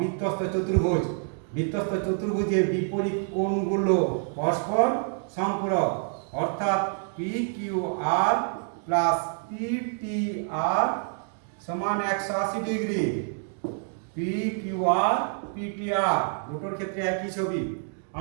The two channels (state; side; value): silent; left; 60 dB below the other